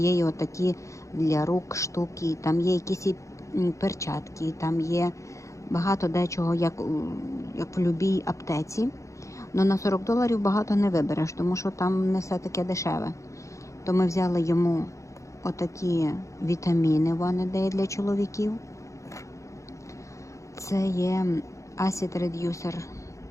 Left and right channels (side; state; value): right; late; 0.15 ms